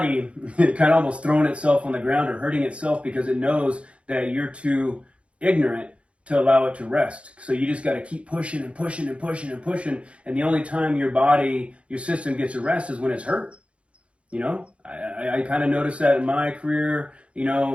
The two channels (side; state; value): left; late; 0.061 ms